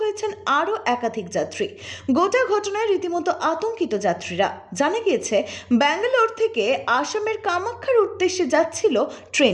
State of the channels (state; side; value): identical; both; correlation 1.00